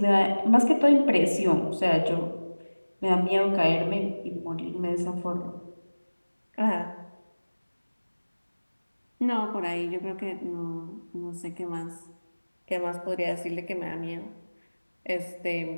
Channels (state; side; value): inverted; both; correlation -1.00